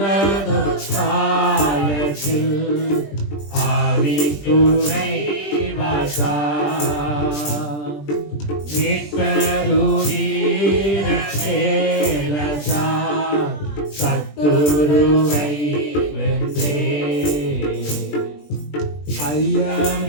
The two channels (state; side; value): late; right; 20 ms